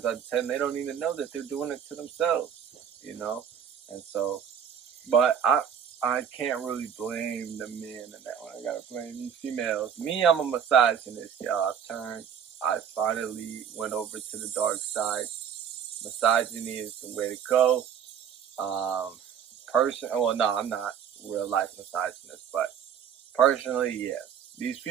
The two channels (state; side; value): quieter; left; 8.2 dB